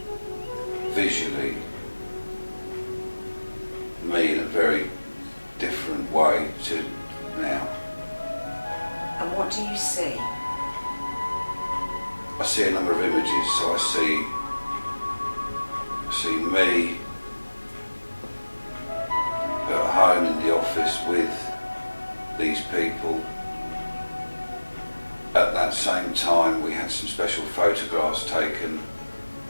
visually me in a very different way to now. And what do you see? I see a number of images, so I see me at home in the office with these people. At that same time, we had some special photographs taken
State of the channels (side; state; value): both; inverted; correlation -1.00